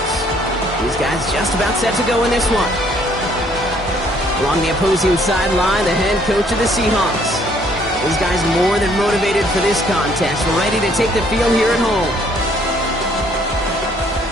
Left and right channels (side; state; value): both; normal; correlation 0.64